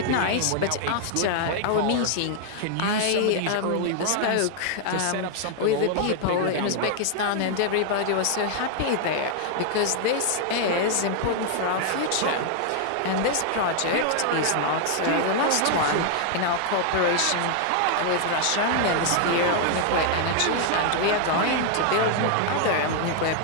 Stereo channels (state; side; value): different; both; correlation 0.00